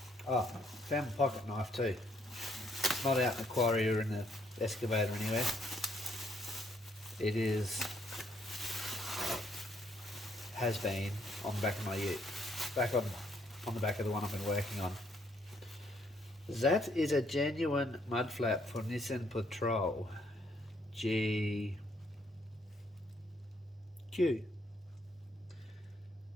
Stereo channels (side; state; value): both; normal; correlation 0.70